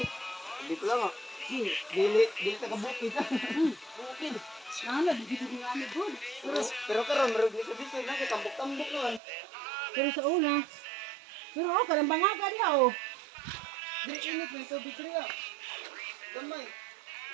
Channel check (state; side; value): drops out; left; at 9.2 s